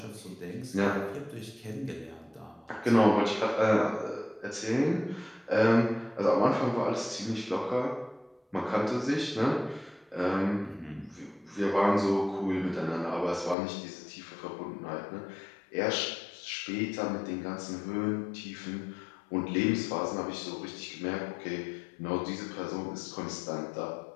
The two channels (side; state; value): right; drops out; at 13.6 s